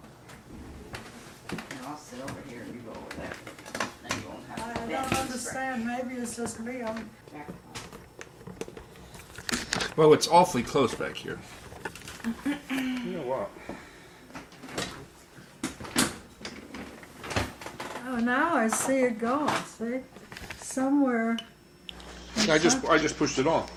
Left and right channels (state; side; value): identical; both; correlation 1.00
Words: And I'll sit over here and you go over there. Then you won't have to I bend don't and understand. Maybe it's just me. I'm stretch. Well, it's awfully close back here. You know what? Oh, now I see it going. See, somewhere. I just pushed it on.